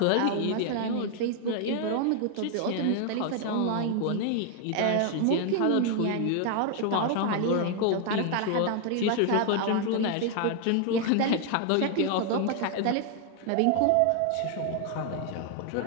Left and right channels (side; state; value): both; different; correlation 0.00